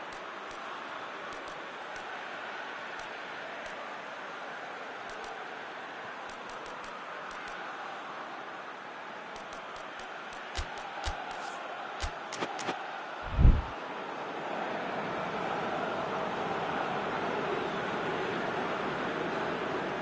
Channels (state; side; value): identical; both; correlation 1.00